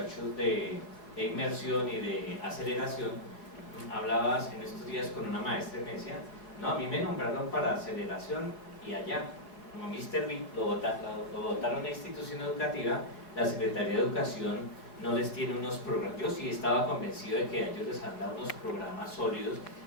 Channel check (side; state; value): right; late; 4.6 ms